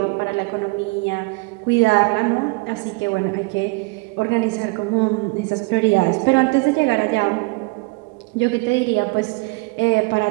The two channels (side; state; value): left; quieter; 27.4 dB